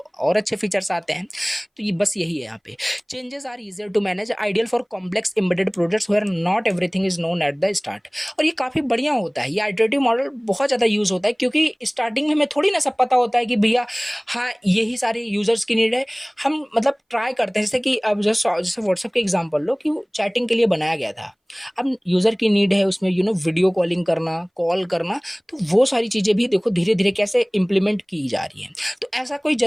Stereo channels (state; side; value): identical; both; correlation 1.00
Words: और अच्छे फीचर्स आते हैं। तो ये बस यही है यहाँ पे। Changes are easier to manage, ideal for complex embedded projects where not everything is known at the start. और ये काफ़ी बढ़िया होता है, ये आइटरेटिव मॉडल बहुत ज़्यादा यूज़ होता है, क्योंकि स्टार्टिंग में हमें थोड़ी ना सब पता होता है कि भैया हाँ यही सारे यूज़र्स की नीड है। हम मतलब ट्राई करते हैं, जैसे कि अब जैसे व्हाट्सएप के एग्जाम्पल लो कि चैटिंग के लिए बनाया गया था, अब यूज़र की नीड है उसमें वीडियो कॉलिंग करना, कॉल करना, तो वो सारी चीज़ें भी देखो धीरे धीरे कैसे इम्प्लीमेंट की जा रही हैं। तो ऐसा कोई